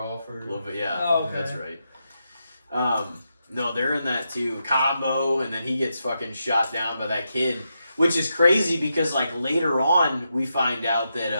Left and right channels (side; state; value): both; inverted; correlation -0.85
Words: Yeah, Oh, okay. that's right. No, they're in that too. Combo, and then he gets fucking shot down by that kid, which is crazy because like later on we find out